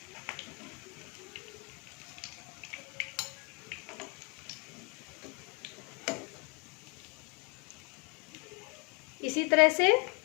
इसी तरह से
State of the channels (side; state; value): right; quieter; 32.3 dB